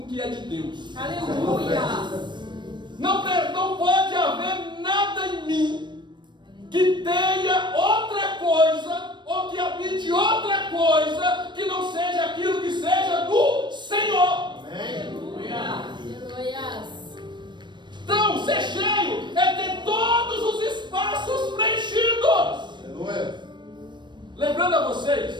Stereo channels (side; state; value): left; late; 0.22 ms